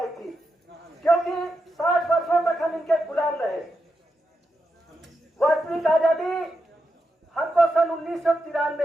थी, क्योंकि 60 वर्षों तक हम इनके गुलाम रहे। वास्तविक आजादी हमको सन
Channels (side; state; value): both; normal; correlation 0.86